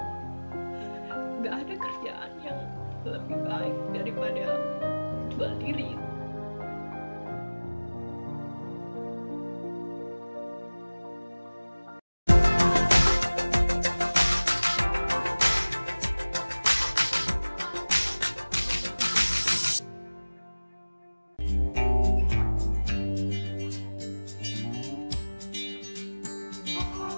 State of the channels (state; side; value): inverted; both; correlation -1.00